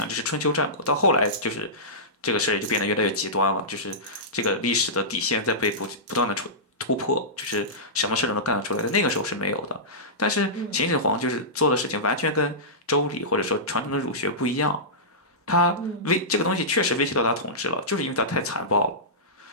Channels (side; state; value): both; normal; correlation -0.17